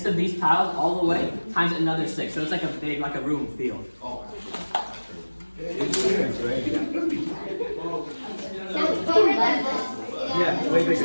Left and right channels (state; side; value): inverted; both; correlation -1.00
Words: of these tiles all the way times another 6. So it's like a big, like a room field. Yeah, way